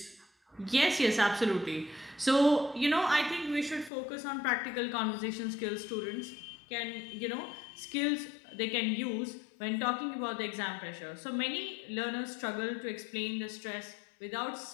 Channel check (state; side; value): drops out; right; at 3.9 s